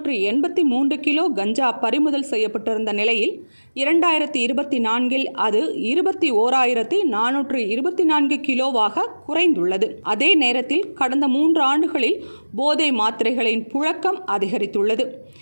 கிலோ கஞ்சா பறிமுதல் செய்யப்பட்டிருந்த நிலையில் 2024 அது 21,424 கிலோவாக குறைந்துள்ளது. அதே நேரத்தில் கடந்த 3 ஆண்டுகளில் போதை மாத்திரைகளின் புழக்கம் அதிகரித்துள்ளது.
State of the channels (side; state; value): both; inverted; correlation -1.00